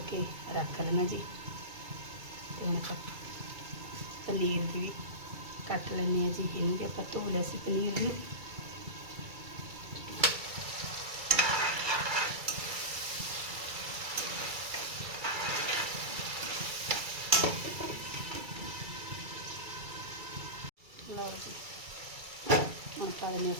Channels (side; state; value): left; late; 2.3 ms